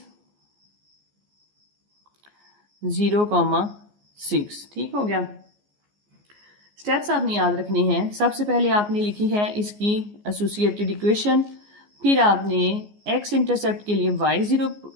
0,6। ठीक हो गया। स्टेप्स आपने याद रखने हैं। सबसे पहले आपने लिखी है इसकी एसोसिएटेड इक्वेशन, फिर आपने x इंटरसेप्ट के लिए y 0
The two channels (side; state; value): left; late; 14 ms